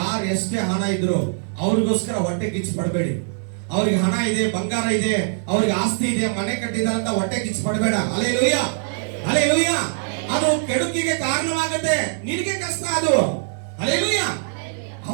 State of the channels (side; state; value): left; silent; 57 dB below the other